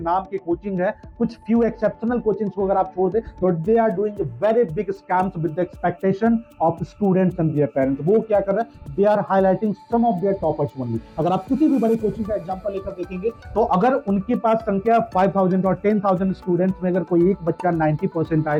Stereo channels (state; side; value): identical; both; correlation 1.00